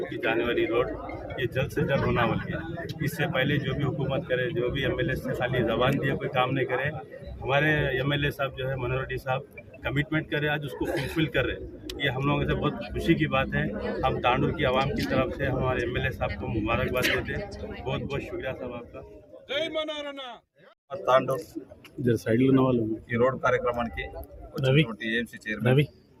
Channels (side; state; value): both; identical; correlation 1.00